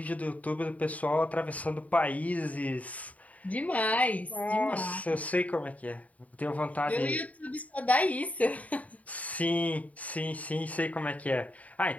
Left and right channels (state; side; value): late; right; 0.070 ms